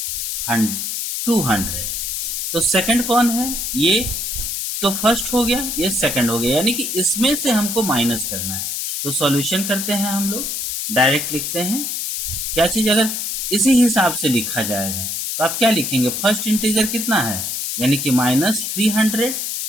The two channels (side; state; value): left; noise; hiss, 3 dB below the sound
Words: तो सेकंड कौन है? ये तो फर्स्ट हो गया, ये सेकंड हो गया, यानी कि इसमें से हमको माइनस करना है। तो सॉल्यूशन करते हैं हम लोग, डायरेक्ट लिखते हैं क्या चीज, अगर इसी हिसाब से लिखा जाएगा तो आप क्या लिखेंगे? फर्स्ट इंटीजर कितना है, यानी कि -300